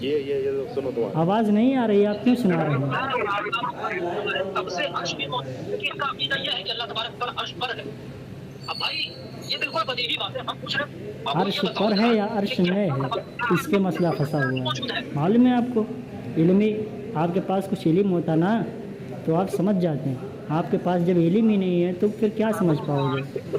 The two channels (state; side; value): identical; both; correlation 1.00